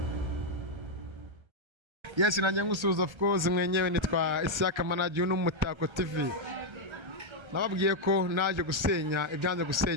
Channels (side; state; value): left; late; 1.3 ms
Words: Yes, nanjye ngusuhuza of course mwenyewe nitwa Isaka Manager n'Umutako TV. Nababwiye ko naje gusenya ibyanze